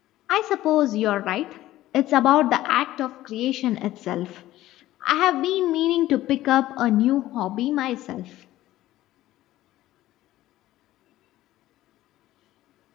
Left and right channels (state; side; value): quieter; right; 15.1 dB